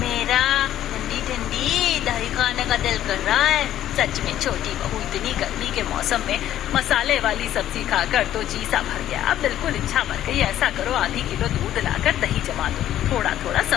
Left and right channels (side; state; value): right; quieter; 12.1 dB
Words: ठंडी ठंडी दही खाने का दिल कर रहा है। सच में छोटी बहू, इतनी गर्मी के मौसम में मसाले वाली सब्जी खाकर तो जी सा भर गया। अब बिल्कुल इच्छा मर गई। ऐसा करो, आधी किलो दूध लाकर दही जमा दो, थोड़ा थोड़ा